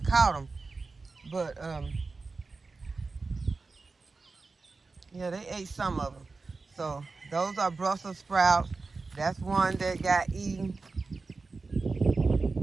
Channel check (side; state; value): left; quieter; 4.0 dB